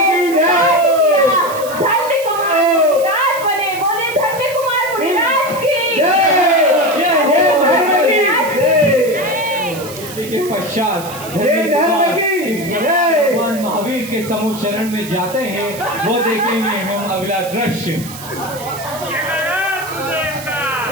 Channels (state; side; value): noise; right; hiss, 14 dB below the sound